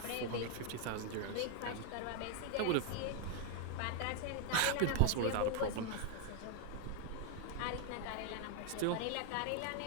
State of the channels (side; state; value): both; different; correlation 0.01